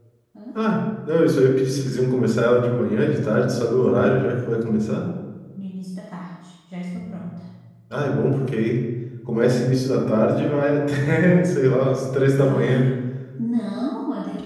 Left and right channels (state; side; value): identical; both; correlation 1.00